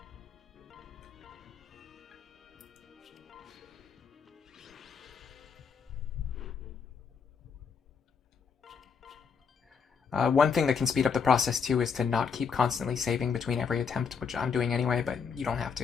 One thing that can speed up the process too is to not keep constantly saving between every attempt, which I'm doing anyway, but you don't have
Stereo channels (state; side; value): quieter; right; 6.1 dB